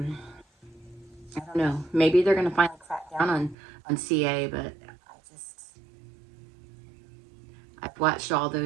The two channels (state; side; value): drops out; left; at 3.6 s